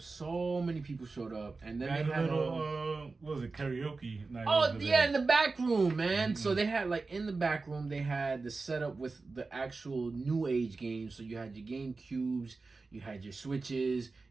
many people showed up, and then they had a little what was it, karaoke night? Oh yeah, in the back room, man. So they had in the back room they had the setup with the actual new age games. So you had your GameCubes, you had your Switches,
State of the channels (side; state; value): left; quieter; 3.9 dB